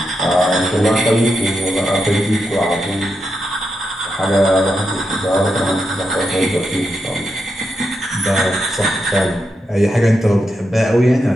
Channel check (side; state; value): both; normal; correlation 0.85